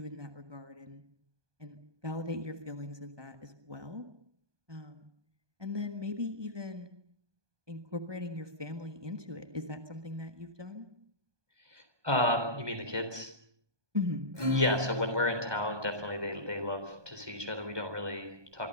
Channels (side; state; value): left; late; 1.2 ms